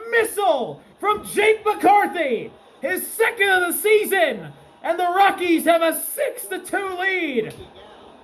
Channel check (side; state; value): both; identical; correlation 1.00